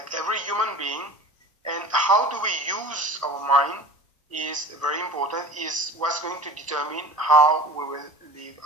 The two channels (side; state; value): both; normal; correlation 0.38